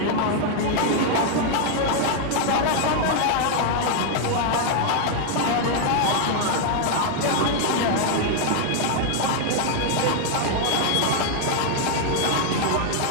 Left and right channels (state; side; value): different; both; correlation 0.00